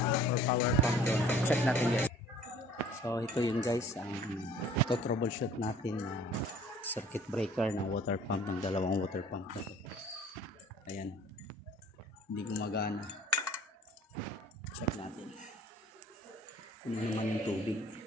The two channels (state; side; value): normal; both; correlation 0.51